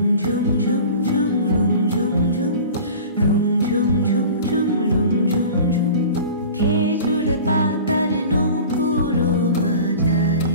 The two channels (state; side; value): inverted; both; correlation -0.40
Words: ঝুম ঝুম ঝুম রুম ঝুম ঝুম রুম ঝুম ঝুম ঝুম রুম ঝুম ঝুম খেজুর পাতার নূপুরও বাজায়